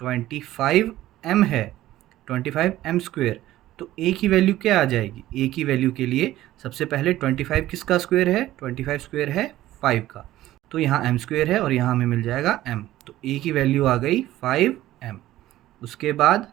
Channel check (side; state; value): left; quieter; 14.9 dB